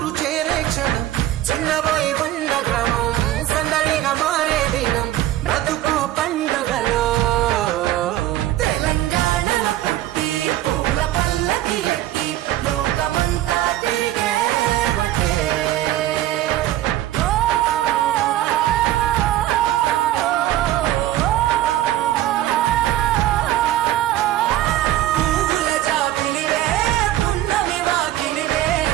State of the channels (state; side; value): quieter; left; 14.1 dB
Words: చేరే క్షణం చిన్నబోయి బండ గ్రామం సందడిగా మారే దినం బ్రతుకు పండుగలో. తెలంగాణలో పుట్టి పూల పల్లకి ఎక్కి లోకమంతా తిరిగేవటే. పువ్వుల జాబిలివే పున్నమి వాకిలివే